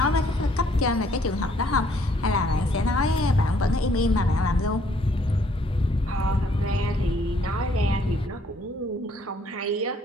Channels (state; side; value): normal; both; correlation 0.65